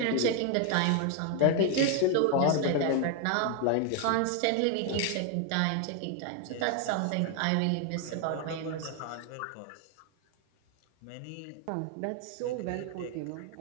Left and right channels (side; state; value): both; different; correlation 0.01